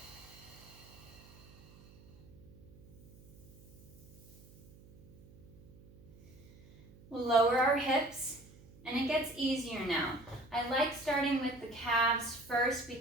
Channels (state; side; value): noise; right; hum, 22 dB below the sound